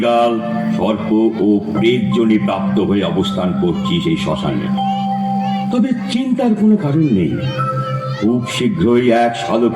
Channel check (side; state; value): both; identical; correlation 1.00